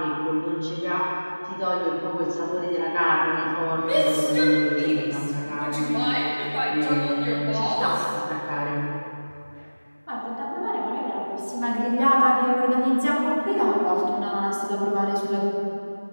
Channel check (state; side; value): inverted; both; correlation -1.00